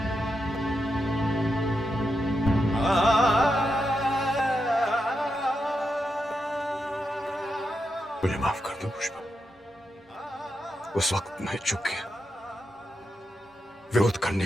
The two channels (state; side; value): normal; both; correlation 0.86